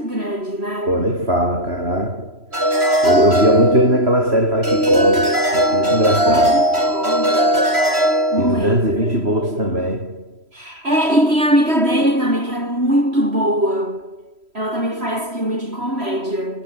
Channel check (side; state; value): left; late; 3.0 ms